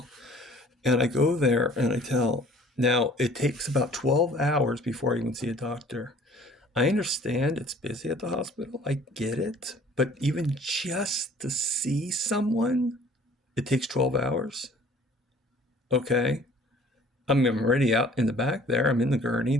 And I go there and I tell, now it takes about 12 hours before I even see a doctor. I understand it's busy at the hospital. I get it. But even just to see someone, it takes 12 hours. Okay. I mean, I'm already out in the back there. I'm in the gurney.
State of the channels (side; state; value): both; normal; correlation 0.53